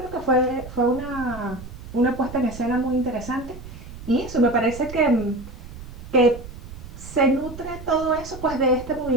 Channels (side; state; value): right; noise; rumble, 14 dB below the sound